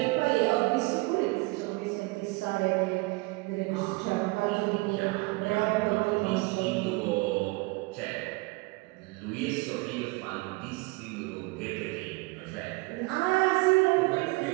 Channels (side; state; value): left; quieter; 25.3 dB